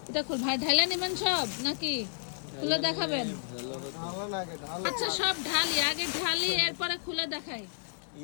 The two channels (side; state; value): right; silent; 57 dB below the other